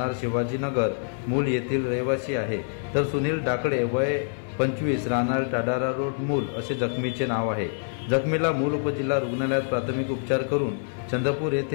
शिवाजीनगर मूल येथील रहिवासी आहे, तर सुनील डाकडे वय 25 राहणार टाडारा रोड मूल असे जखमीचे नाव आहे। जखमीला मूल उपजिल्हा रुग्णालयात प्राथमिक उपचार करून चंद्रपूर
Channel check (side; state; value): right; silent; 61 dB below the other